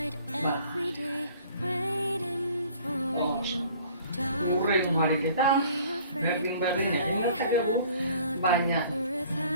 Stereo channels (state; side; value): inverted; both; correlation -0.53